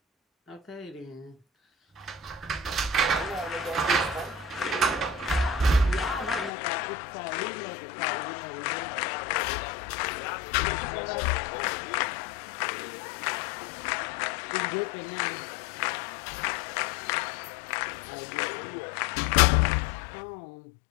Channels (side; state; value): right; drops out; at 6.5 s